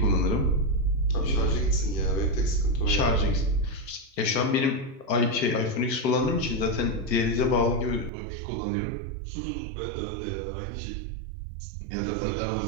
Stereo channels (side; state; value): left; drops out; at 8.1 s